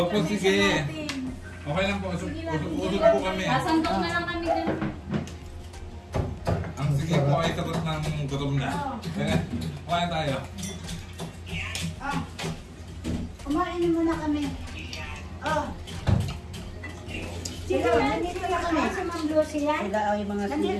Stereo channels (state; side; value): identical; both; correlation 1.00